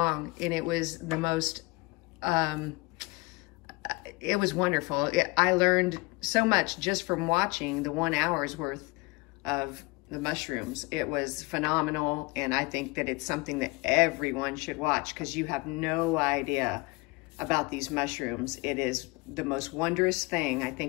and it was the most, it was wonderful. I learned so much just from watching the 1 hour's worth of the mushrooms. It was phenomenal, and I think that it's something that everyone should watch because you have no idea about these mushrooms. It is the most wondrous thing I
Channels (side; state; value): right; quieter; 24.9 dB